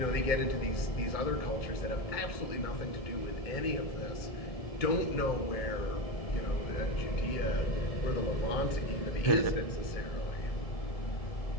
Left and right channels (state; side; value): late; right; 1.7 ms